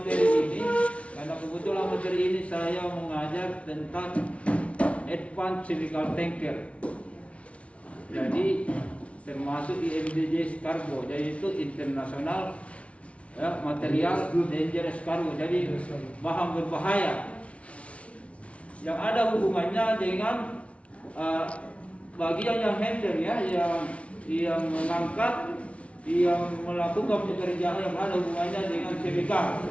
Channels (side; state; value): right; late; 0.063 ms